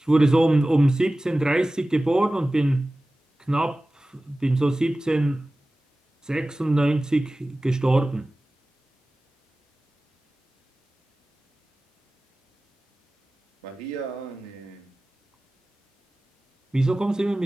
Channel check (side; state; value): both; normal; correlation 0.97